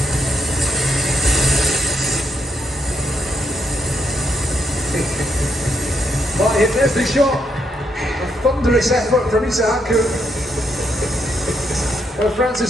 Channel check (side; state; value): both; normal; correlation 0.77